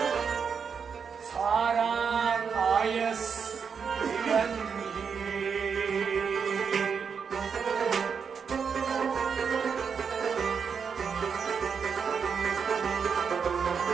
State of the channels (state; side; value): quieter; left; 6.3 dB